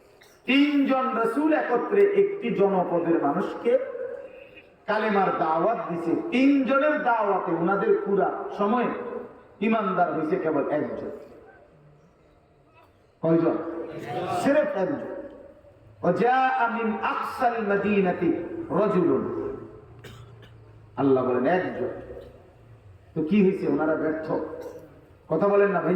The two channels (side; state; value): both; identical; correlation 1.00